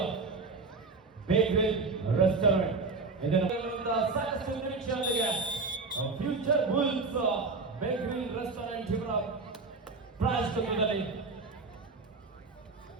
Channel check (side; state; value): left; quieter; 4.0 dB